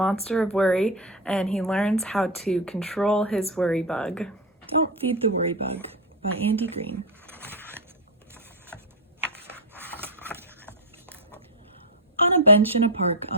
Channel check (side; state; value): both; normal; correlation 0.09